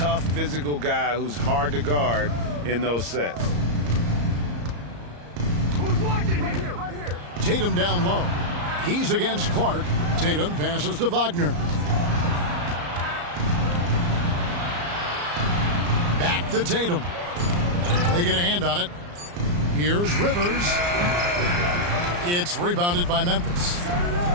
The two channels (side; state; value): left; late; 34 ms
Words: physical guy who's hard to guard in those sets. Who's watching here? Right here. Tatum down low. He's against Clark. Tatum passes to Wagner. Back to Tatum. They get a hand on it. Here's Rivers. It's rebounded by Memphis.